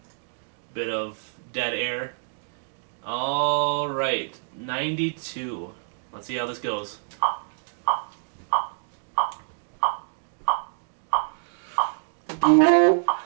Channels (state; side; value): silent; left; digital silence